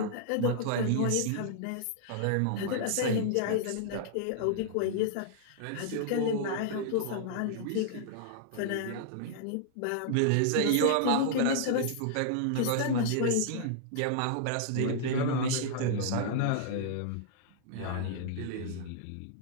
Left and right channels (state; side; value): different; both; correlation -0.01